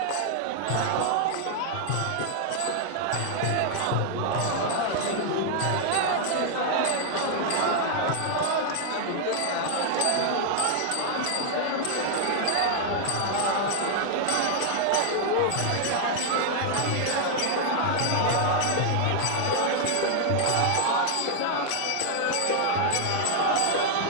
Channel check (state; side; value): different; both; correlation 0.00